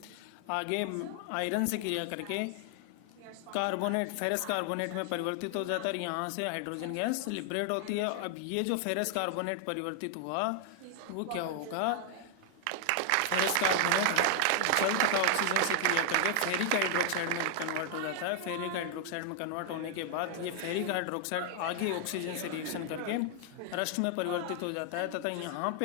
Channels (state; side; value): different; both; correlation 0.00